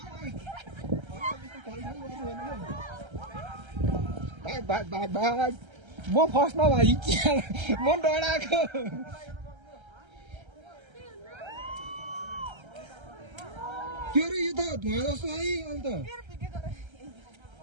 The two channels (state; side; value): late; left; 1.3 ms